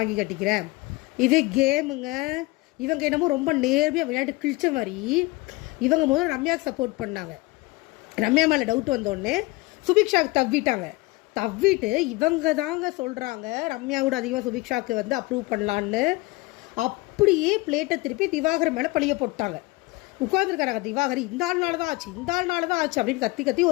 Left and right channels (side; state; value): right; quieter; 22.2 dB